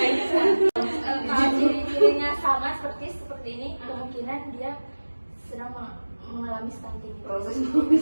sama seperti ini, kemungkinan dia sedang mengalami stunting. Proses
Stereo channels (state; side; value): inverted; both; correlation -1.00